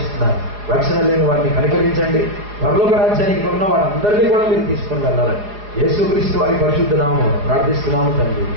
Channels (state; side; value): late; left; 4.8 ms